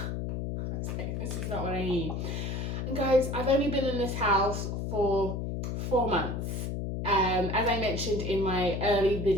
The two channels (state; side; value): noise; left; hum, 3 dB below the sound